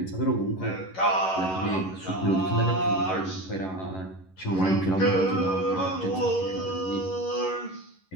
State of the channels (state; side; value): late; right; 11 ms